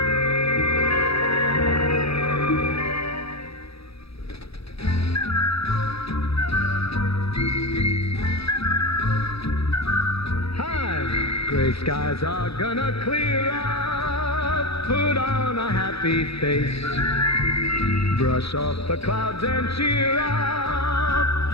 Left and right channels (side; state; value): right; late; 0.77 ms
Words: Gray skies are gonna clear up. Put on a happy face. Brush off the clouds and cheer up.